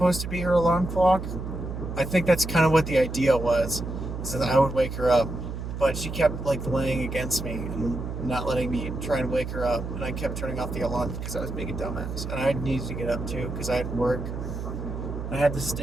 to be her alarm clock? I think that's kind of what the idea was, so that I would wake her up. But she kept like laying against me and not letting me try and wake her up, and I kept turning off the alarm because I was being a dumbass, and I needed to get up too because I had work. I had to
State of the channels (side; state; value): right; noise; hum, 6 dB below the sound